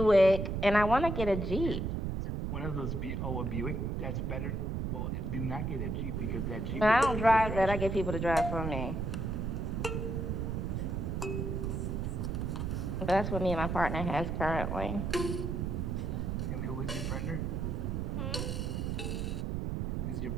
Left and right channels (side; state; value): right; noise; rumble, 1 dB below the sound